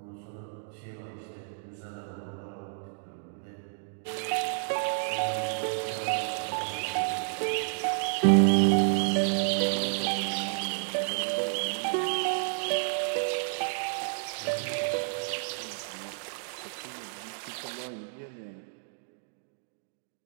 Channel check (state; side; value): silent; left; digital silence